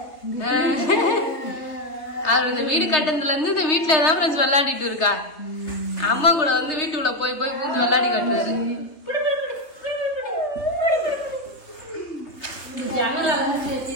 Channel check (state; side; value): late; right; 3.3 ms